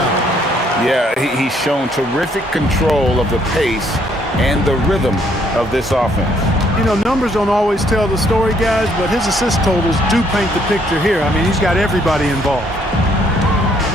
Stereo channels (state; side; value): normal; both; correlation 0.67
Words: Yeah, he's shown terrific control of the pace and the rhythm of this offense. You know, numbers don't always tell the story, guys, but his assist totals do paint the picture here. I mean, he's got everybody involved.